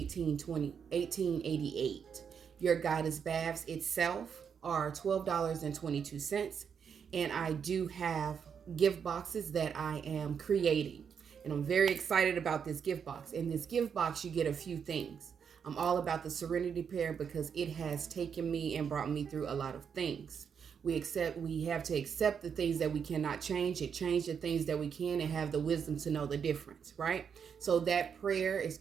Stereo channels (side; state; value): left; quieter; 7.1 dB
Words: Your goddess baths itself are $12.22. And I do have gift boxes that I am creating. And I'm very excited about this gift box. In this gift box, you get a few things. I'm all about the Serenity Prayer because it has taken me and brought me through a lot of things. We have to accept the things that we cannot change, and change the things that we can, and have the wisdom to know the difference, right? So that prayer is